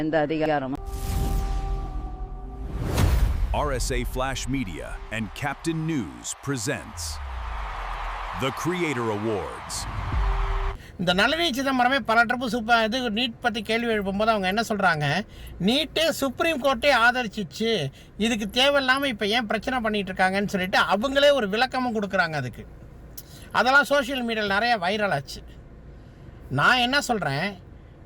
எந்த அதிகாரமும். RSA Flash Media and Captain News presents the Creator Awards. இந்த நளினி சிதம்பரமே பல ட்ரிப்பு இது நீட் பற்றி கேள்வி எழுப்பும்போது அவங்க என்ன சொல்கிறாங்க, நீட்டு சுப்ரீம் கோர்ட்டே ஆதரிச்சிச்சு, இதுக்கு தேவையில்லாமல் இப்போ ஏன் பிரச்சனை பண்ணிகிட்டு இருக்காங்கன்னு சொல்லிட்டு அவங்களே ஒரு விளக்கமும் கொடுக்குறாங்க அதுக்கு. அதெல்லாம் சோஷியல் மீடியாவில் நிறைய வைரல் ஆச்சு. நான் என்ன சொல்கிறேன்,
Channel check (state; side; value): identical; both; correlation 1.00